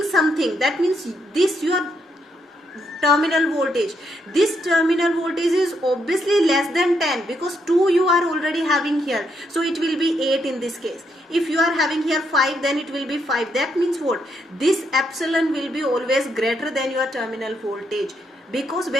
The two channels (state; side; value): normal; both; correlation 0.77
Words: something. That means this your terminal voltage. This terminal voltage is obviously less than 10, because 2 you are already having here. So it will be 8 in this case. If you are having here 5, then it will be 5. That means what? This epsilon will be always greater than your terminal voltage. Because